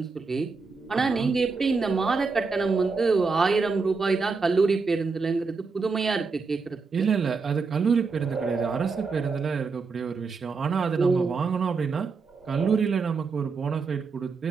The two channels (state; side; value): quieter; left; 4.6 dB